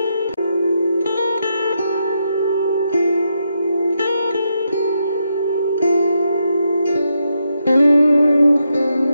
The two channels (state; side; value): inverted; both; correlation -0.82